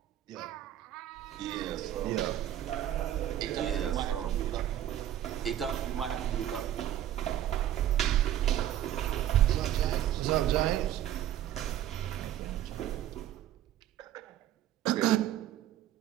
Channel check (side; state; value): left; quieter; 11.8 dB